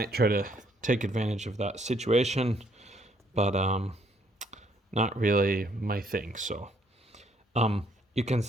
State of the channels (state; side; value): normal; both; correlation 0.68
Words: try to take advantage of that situation, but not really my thing. So you can